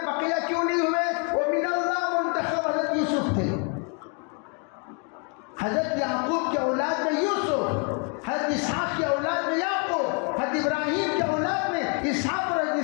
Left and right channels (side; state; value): right; quieter; 37.0 dB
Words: بقیہ کیوں نہیں ہوئے؟ وہ من اللہ منتخب حضرت یوسف تھے. حضرت یعقوب کے اولاد میں یوسف، حضرت اسحاق کے اولاد میں یعقوب، حضرت ابراہیم کے اولاد میں اسحاق اور حضرت